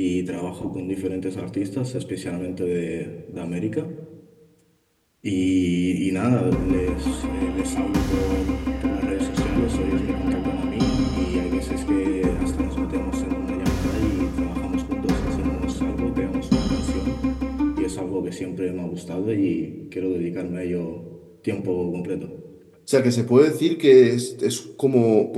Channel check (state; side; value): identical; both; correlation 1.00